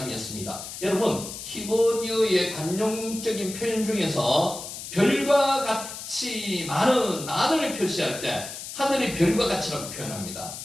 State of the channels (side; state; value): left; noise; hiss, 10 dB below the sound